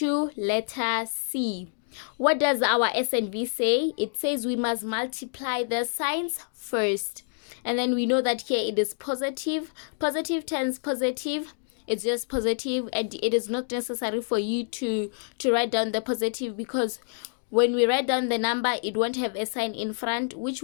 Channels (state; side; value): silent; right; digital silence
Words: letter C. What does our S and V say? It says we must multiply the signs first. And then we know that here it is positive. Positive times positive, it's just positive, and it is not necessary for you to write down the positive, because when we write down the number, it won't have a sign in front, which